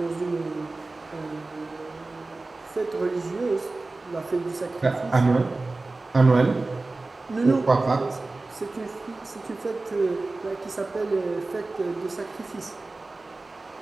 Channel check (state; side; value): quieter; left; 3.3 dB